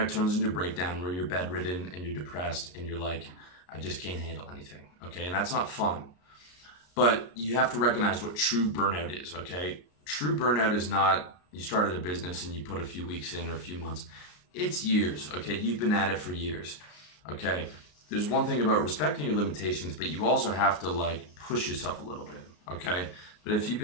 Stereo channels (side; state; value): right; late; 33 ms